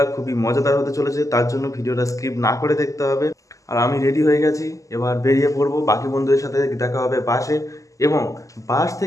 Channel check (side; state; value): right; late; 0.16 ms